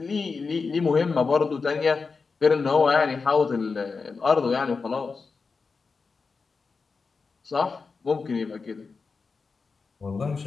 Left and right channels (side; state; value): right; quieter; 4.7 dB